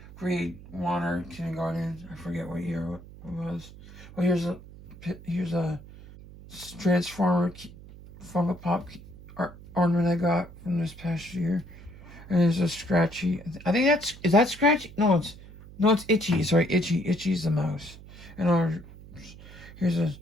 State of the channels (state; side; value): noise; right; hum, 18 dB below the sound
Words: grade 1 or kindergarten. I forget what year it was. Well, here's a Transformer Funko Pop ornament I got from this past year, and there's a Scratchy. I think is that Scratchy? No, it's Itchy. Sorry, Itchy. Itchy's the mouse. And here's a